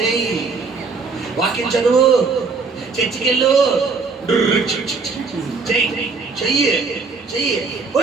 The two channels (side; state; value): left; quieter; 4.5 dB